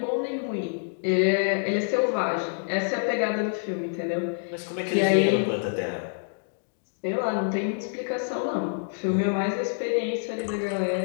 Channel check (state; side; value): silent; right; digital silence